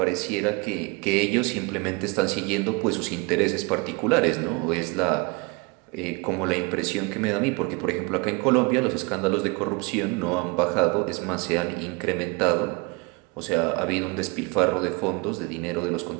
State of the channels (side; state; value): left; quieter; 28.5 dB